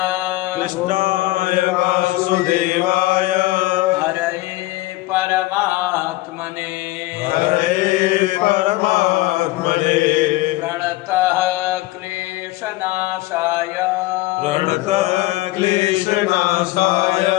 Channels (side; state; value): right; quieter; 18.5 dB